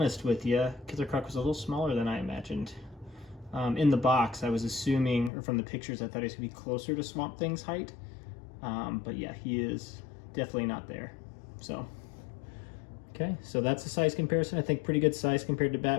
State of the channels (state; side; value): drops out; right; at 5.3 s